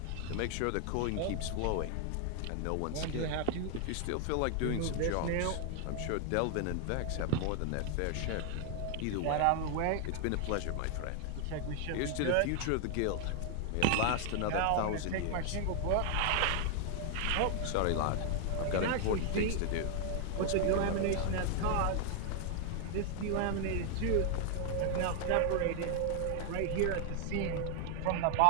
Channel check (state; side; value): different; both; correlation 0.00